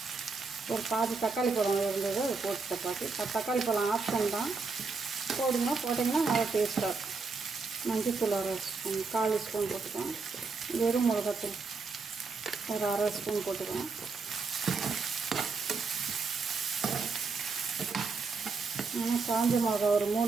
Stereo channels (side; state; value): left; quieter; 4.5 dB